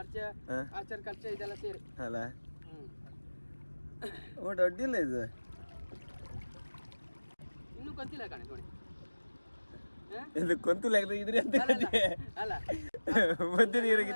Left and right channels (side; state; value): both; inverted; correlation -1.00